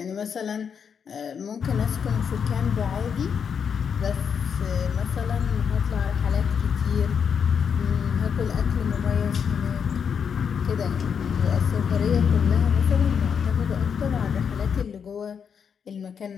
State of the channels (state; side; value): quieter; right; 7.0 dB